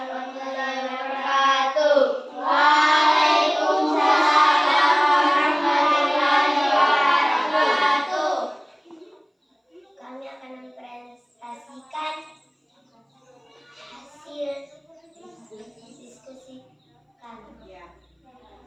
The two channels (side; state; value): both; identical; correlation 1.00